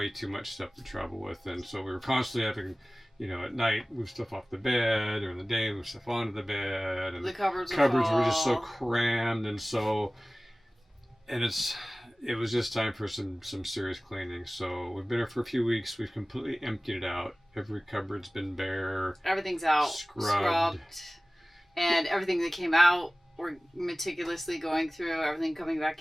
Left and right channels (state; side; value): normal; both; correlation 0.98